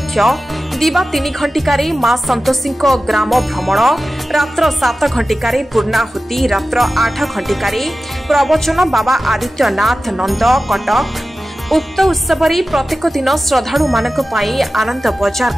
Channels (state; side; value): normal; both; correlation 0.95